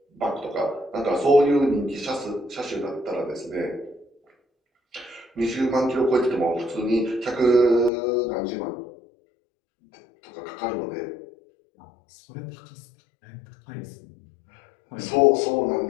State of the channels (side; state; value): right; drops out; at 7.9 s